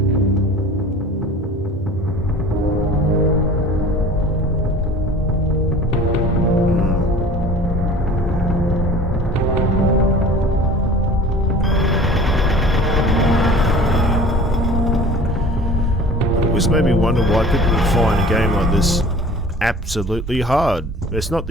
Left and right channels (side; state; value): both; normal; correlation 0.44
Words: This made me wonder why people would find a game like this absolutely hard. It's not